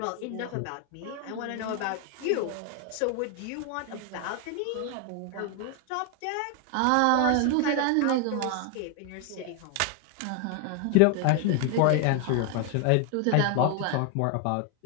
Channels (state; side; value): different; both; correlation 0.01